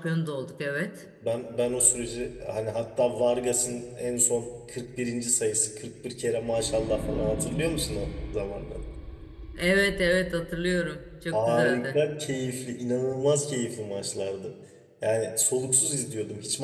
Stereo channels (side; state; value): both; identical; correlation 1.00